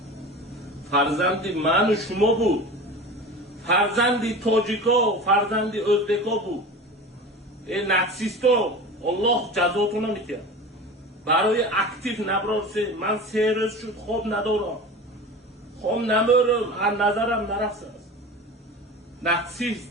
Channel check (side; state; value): both; normal; correlation 0.33